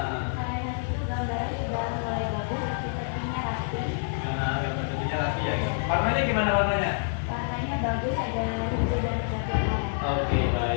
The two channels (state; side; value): silent; right; digital silence